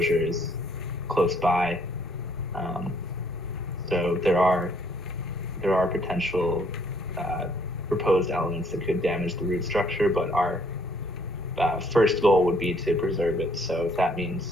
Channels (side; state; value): both; normal; correlation 0.65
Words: is close by. So there are potential proposed elements that could damage the root structure, but our first goal would be to preserve it. So if that